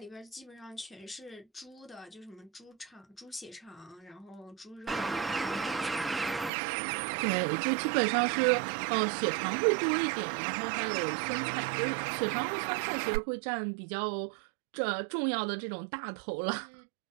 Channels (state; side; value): drops out; left; at 6.5 s